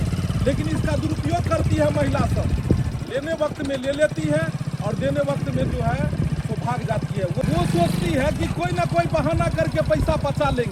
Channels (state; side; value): identical; both; correlation 1.00